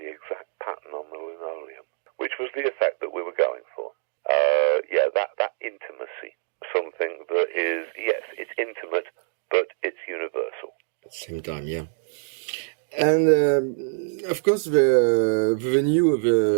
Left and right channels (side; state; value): left; silent; digital silence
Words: exact pattern on the linoleum," which was the effect that we were going for. That intimacy, something that is, yes, it's intimate, but it's universal. At the same time, yeah. And of course, the venue